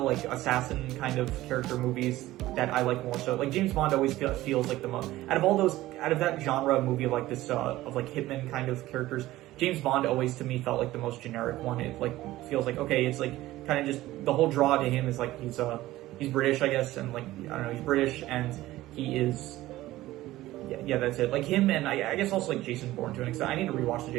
like assassin kind of character movies that I like more. So like James Bond always feels like the most, out of that genre of movie of like this, of like Hitman kind of characters, James Bond always to me felt like the most generic one. It like feels like, okay, it's like kind of just, the whole draw to him is like he's British, I guess, and like, I don't know, he's British and he is, yeah, that's it. Like him, and I guess also like Jason Bourne to an extent. I need to rewatch the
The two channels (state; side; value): quieter; left; 16.4 dB